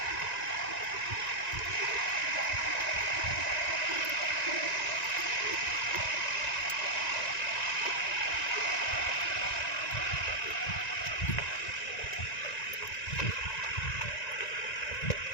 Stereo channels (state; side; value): late; right; 1.9 ms